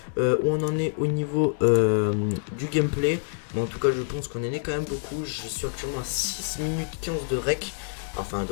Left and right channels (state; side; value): silent; right; digital silence